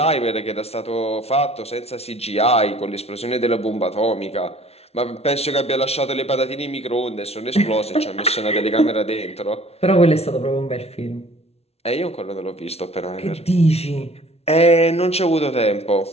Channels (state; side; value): late; right; 0.30 ms